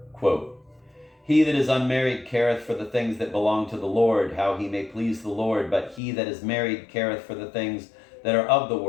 Quote, "He that is unmarried careth for the things that belong to the Lord, how he may please the Lord. But he that is married careth for the things that are of the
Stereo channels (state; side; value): drops out; right; at 6.0 s